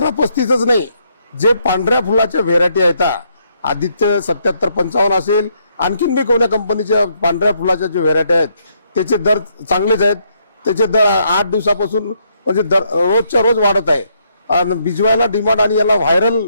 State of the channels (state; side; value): inverted; both; correlation -0.73